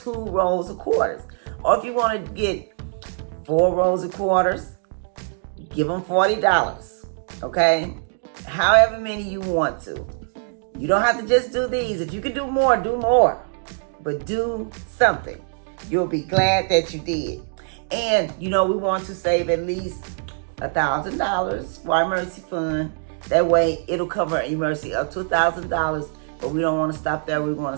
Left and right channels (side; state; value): left; silent; digital silence